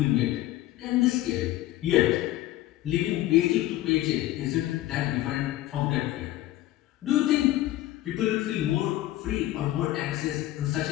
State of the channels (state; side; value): quieter; right; 15.1 dB